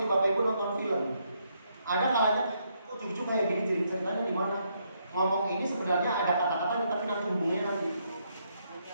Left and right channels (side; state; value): both; inverted; correlation -0.75